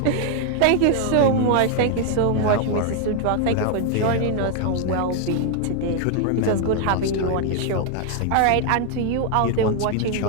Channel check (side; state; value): both; different; correlation 0.00